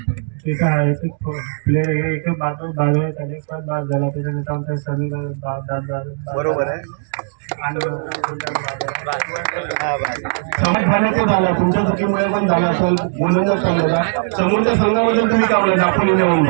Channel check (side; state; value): left; silent; digital silence